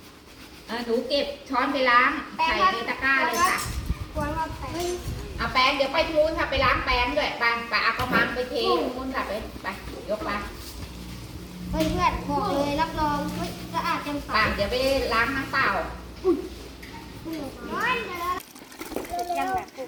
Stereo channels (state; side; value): identical; both; correlation 1.00